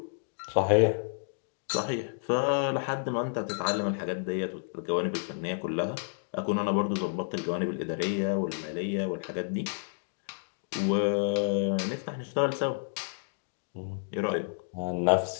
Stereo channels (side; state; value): right; silent; digital silence